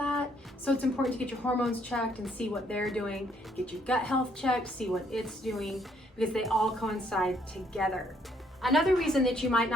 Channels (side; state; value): both; normal; correlation 0.68